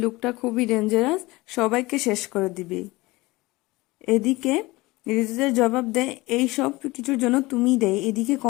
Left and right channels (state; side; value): quieter; right; 21.2 dB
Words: লোকটা খুবই ডেঞ্জারাস, সবাইকে শেষ করে দিবে। এদিকে ঋতুজার জবাব দেয়, এই সব কিছুর জন্য তুমি দেয়। এদিকে